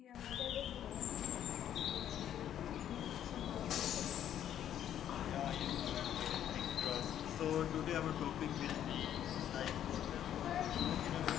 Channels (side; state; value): right; quieter; 10.5 dB